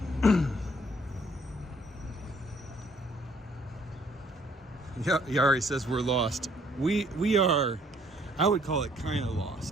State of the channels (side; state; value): both; normal; correlation 0.63